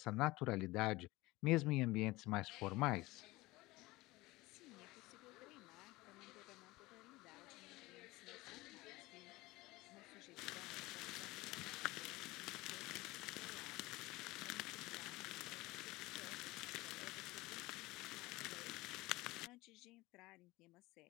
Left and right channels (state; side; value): quieter; right; 20.4 dB